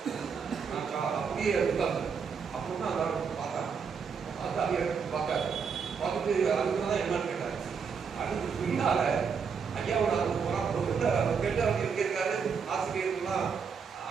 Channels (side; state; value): left; quieter; 6.1 dB